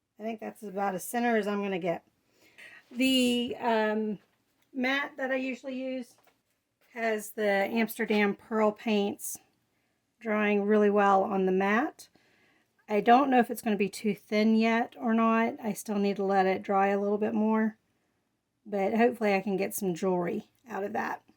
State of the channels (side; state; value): both; identical; correlation 1.00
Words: I think that's about as center as I'm going to get. The mat that I usually use has the Amsterdam Pearl paints drying really well on the mat. I don't know if it's going to be too thin yet or not. I still need to let it dry a little bit more. But hopefully I can get some jewelry out of that.